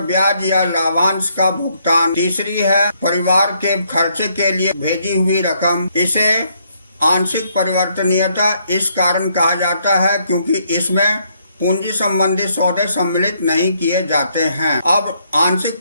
या लाभांश का भुगतान, तीसरी है परिवार के खर्चे के लिए भेजी हुई रकम। इसे आंशिक परिवर्तनीयता इस कारण कहा जाता है क्योंकि इसमें पूंजी संबंधी सौदे सम्मिलित नहीं किए जाते हैं। अब आंशिक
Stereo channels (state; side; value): inverted; both; correlation -0.72